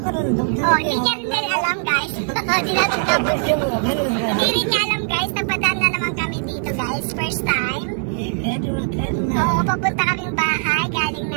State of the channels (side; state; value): left; silent; 58 dB below the other